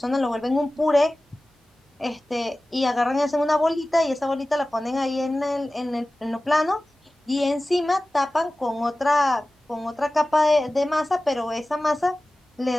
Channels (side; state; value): both; normal; correlation 0.97